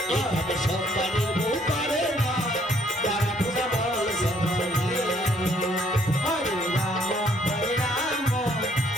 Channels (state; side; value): normal; both; correlation 0.65